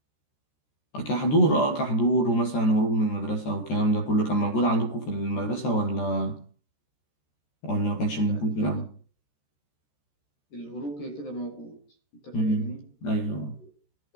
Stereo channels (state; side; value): late; right; 14 ms